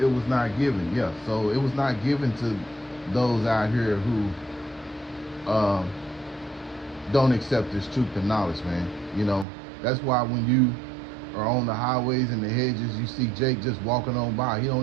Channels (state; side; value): drops out; left; at 9.5 s